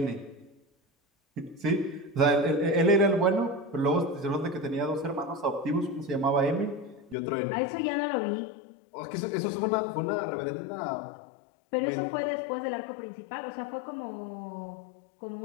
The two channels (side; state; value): right; drops out; at 7.2 s